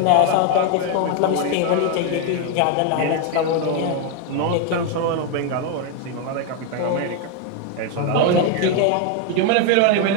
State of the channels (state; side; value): different; both; correlation 0.01